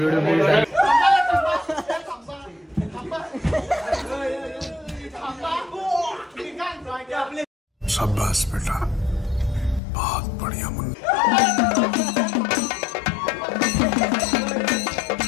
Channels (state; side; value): drops out; right; at 9.8 s